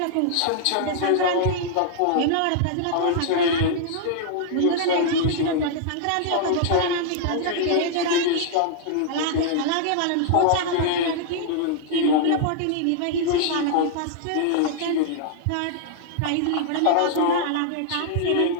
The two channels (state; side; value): different; both; correlation -0.01